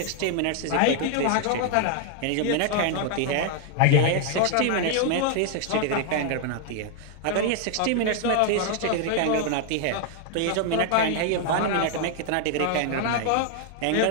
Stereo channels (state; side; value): different; both; correlation 0.00